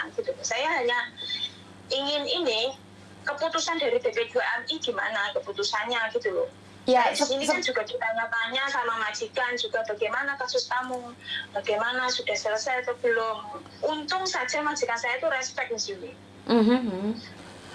gitu. Saya hanya ingin ini keputusan dari BP2MI gimana keputusannya gitu loh. Ya, di sini kan juga ditanya-tanya sama majikan juga bagaimana kasus kamu, bagaimana sudah selesai atau belum. Untung saja majikan saya itu respect Miss Yuni.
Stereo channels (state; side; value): identical; both; correlation 1.00